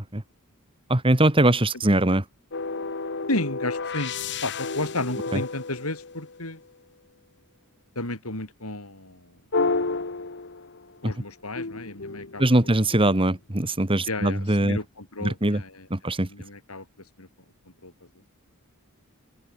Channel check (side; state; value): both; normal; correlation 0.51